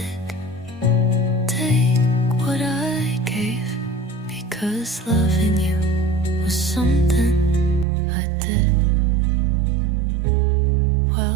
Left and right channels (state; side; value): drops out; left; at 7.9 s